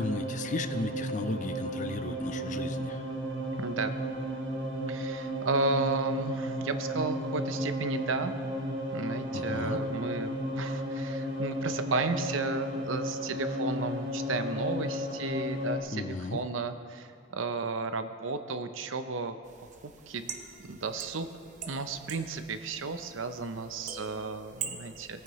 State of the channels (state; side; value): normal; both; correlation 0.20